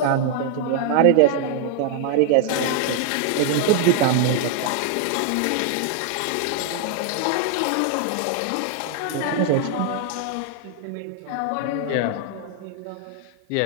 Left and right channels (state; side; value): different; both; correlation 0.00